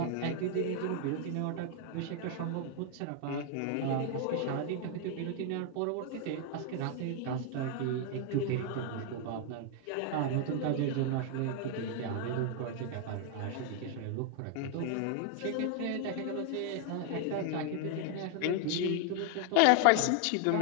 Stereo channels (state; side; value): different; both; correlation 0.00